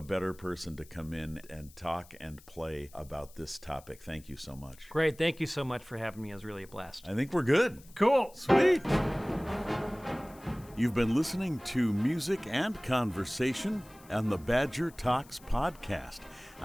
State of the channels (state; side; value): noise; left; hiss, 24 dB below the sound